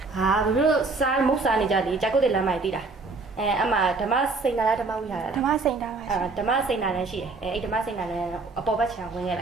ဟာဘေးတို့စားမုတ်စားနေကြတယ်ကြာကုတ်တဲ့လမ်းမိုက်တီးတာအမဓမ္မစိန်နာလားဓမ္မဝိဟာရ ဓမ္မစိန်တာပါရှင် ဓမ္မစိန်နာလည်းရှိတယ်အဲ့ဓမ္မစိန်နာလည်းအပေါ်ဘက်ခြံဝင်ခဲ့လ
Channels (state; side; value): quieter; left; 3.8 dB